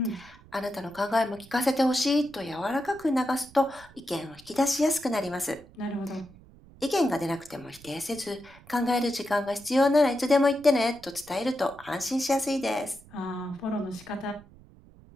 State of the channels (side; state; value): right; noise; rumble, 23 dB below the sound